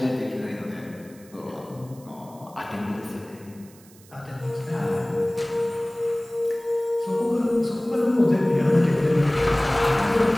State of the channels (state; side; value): noise; right; hiss, 25 dB below the sound